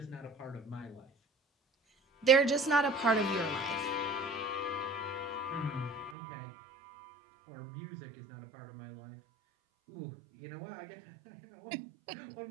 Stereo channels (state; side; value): drops out; left; at 6.2 s